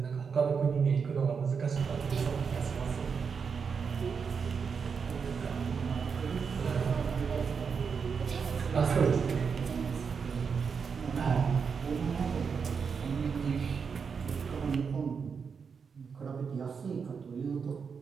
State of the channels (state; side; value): quieter; left; 6.0 dB